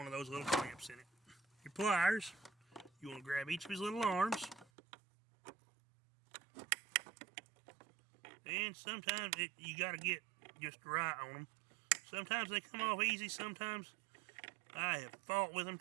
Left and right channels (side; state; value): left; drops out; at 4.7 s